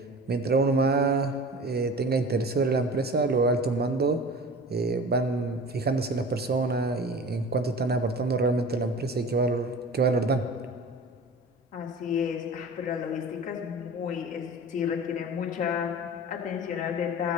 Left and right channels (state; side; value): normal; both; correlation 0.38